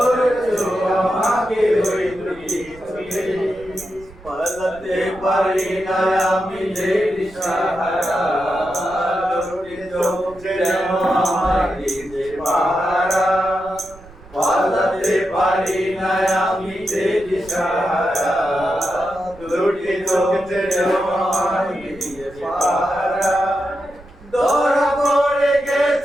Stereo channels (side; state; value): right; noise; rumble, 22 dB below the sound